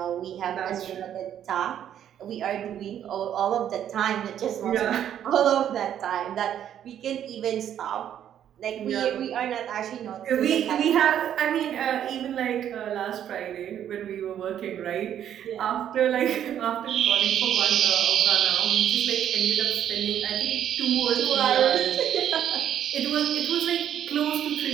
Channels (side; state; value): left; quieter; 10.1 dB